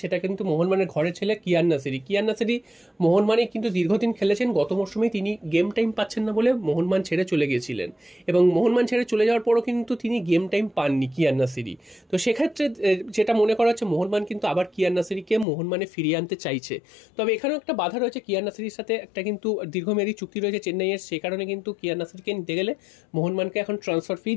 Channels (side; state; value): right; drops out; at 15.5 s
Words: সেটা কিন্তু মোহনবাগানের ঘরের ছেলে কিয়ান নাসিরি। কিয়ান নাসিরি মোহনবাগানে কিন্তু দীর্ঘদিন খেলেছেন, গত মরশুমেই তিনি গেম টাইম পাচ্ছেন না বলে মোহনবাগান ছেড়ে চলে গিয়েছিলেন, এবং মোহনবাগান ছেড়ে চলে যাওয়ার পরও কিন্তু তিনি গেম টাইম পাননি কিয়ান নাসিরি। তো সেক্ষেত্রে যেটা মনে করা হচ্ছে, মোহনবাগান কিন্তু আবার কিয়ান নাসিরিকে মোহনবাগানে ফিরিয়ে আনতে চাইছে। তবে এখানেও একটা বাধা রয়েছে, কিয়ান নাসিরির সাথে একটা কিন্তু দীর্ঘমেয়াদী চুক্তি রয়েছে চেন্নাইয়ের, সেই কারণে কিন্তু কিয়ান নাসিরিকে নিতে গেলে মোহনবাগানকে এখন ট্রান্সফার ফি